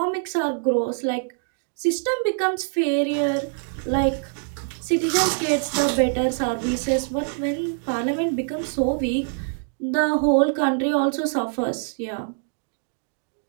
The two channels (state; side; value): silent; left; 62 dB below the other